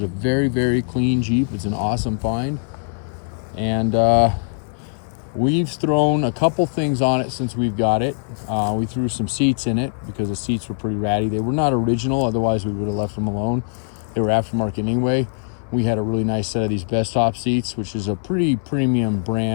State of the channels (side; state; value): right; silent; 61 dB below the other